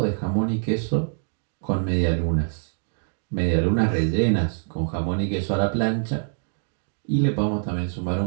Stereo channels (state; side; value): silent; left; digital silence